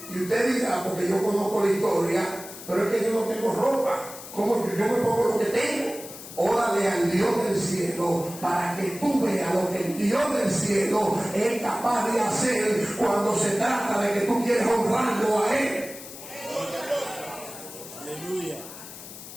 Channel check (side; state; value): left; noise; hiss, 14 dB below the sound